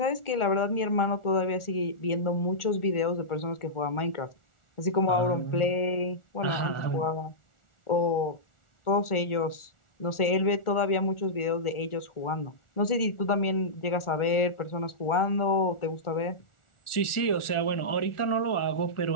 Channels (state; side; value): late; right; 1.4 ms